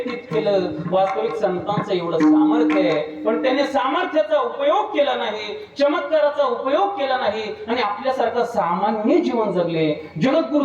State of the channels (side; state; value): both; identical; correlation 1.00